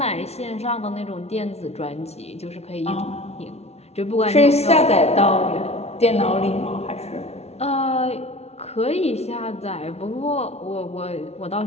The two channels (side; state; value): right; late; 0.31 ms